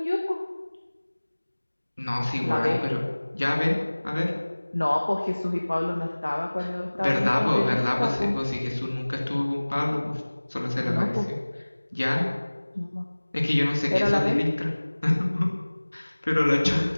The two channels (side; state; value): both; inverted; correlation -1.00